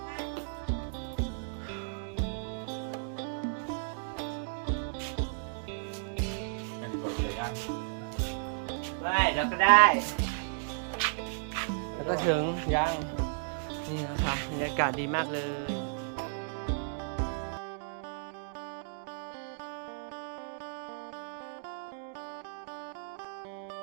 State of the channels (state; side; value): silent; left; digital silence